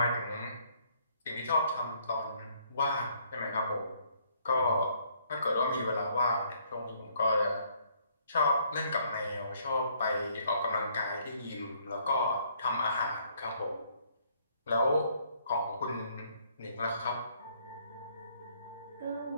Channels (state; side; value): inverted; both; correlation -0.65